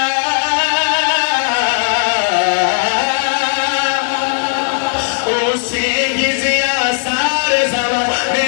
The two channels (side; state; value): right; silent; digital silence